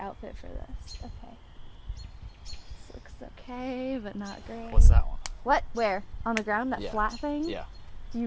for this. Okay. This looks okay, but not great. What's that one? What? Where? On the ground? That Yeah. flat thing? Yeah. Do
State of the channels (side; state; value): both; identical; correlation 1.00